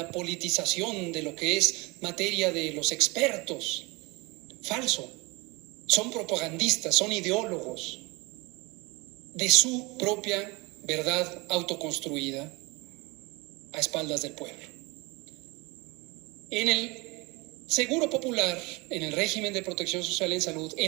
politización de lo que es materia de los expertos. Falso. Son propagandistas, son ideólogos de su propia verdad autoconstruida a espaldas del pueblo. En el Seguro Popular, en el régimen de protección social en salud,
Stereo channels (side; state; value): left; quieter; 25.8 dB